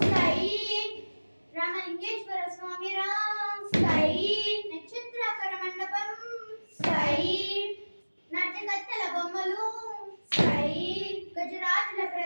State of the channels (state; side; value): inverted; both; correlation -1.00